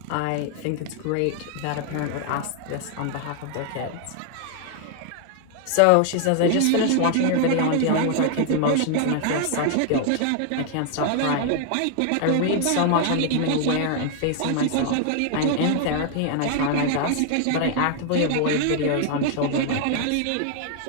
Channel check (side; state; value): both; different; correlation 0.00